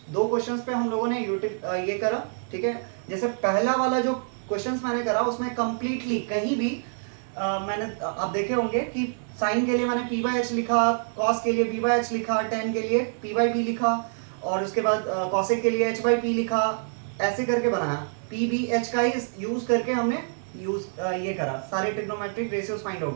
2 क्वेश्चंस पे हम लोगों ने ये करा, ठीक है। जैसे पहला वाला जो क्वेश्चंस मैंने करा उसमें कंप्लीटली कहीं भी मैंने आप देखे होंगे कि साइन के लिए मैंने p बाई एच लिखा, कॉस के लिए b बाई एच लिखा, टेन के लिए p बाई बी लिखा, और उसके बाद कॉसेक के लिए h बाई पी लिखा, ऐसे करके बनाया। p b h का ही यूज करके हमने ये करा, सारे ट्रिग्नोमेट्रिक रेशियोज फाइंड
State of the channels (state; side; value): silent; left; digital silence